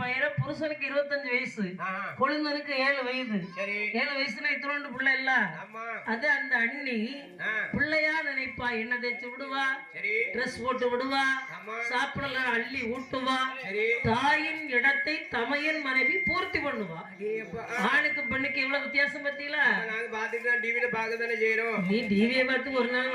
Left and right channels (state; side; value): identical; both; correlation 1.00